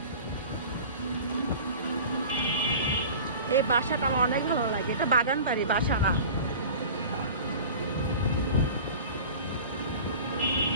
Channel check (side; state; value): both; inverted; correlation -0.39